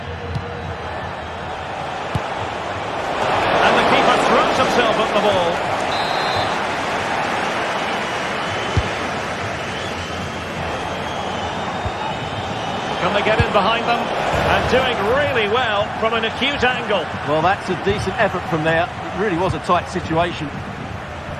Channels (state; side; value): identical; both; correlation 1.00